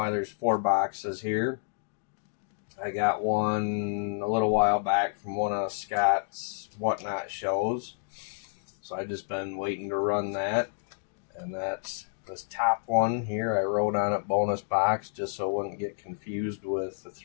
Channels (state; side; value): silent; right; digital silence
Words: there's four boxes here, I got one a little while back from one of Scott's Whatnot shows. So I've just been waiting to run that. And that's this top one here. I wrote on it bonus box just so I wouldn't get confused with the